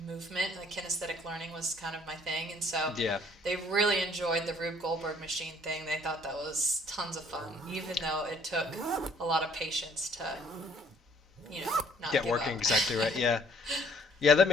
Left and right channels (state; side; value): normal; both; correlation 0.60